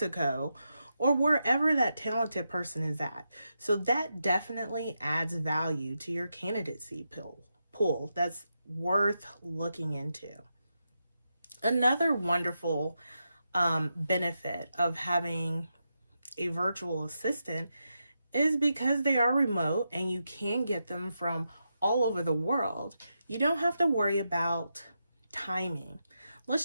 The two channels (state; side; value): inverted; both; correlation -0.86